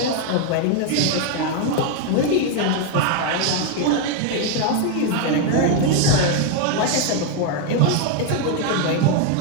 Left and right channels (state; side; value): different; both; correlation 0.01